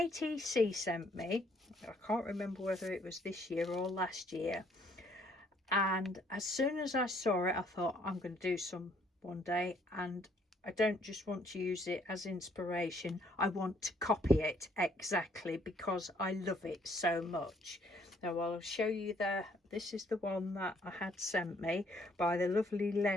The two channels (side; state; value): both; normal; correlation 0.65